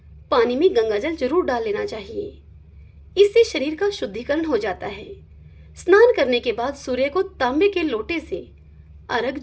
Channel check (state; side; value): identical; both; correlation 1.00